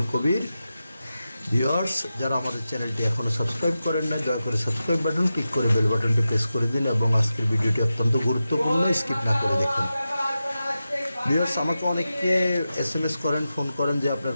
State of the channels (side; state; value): both; inverted; correlation -0.92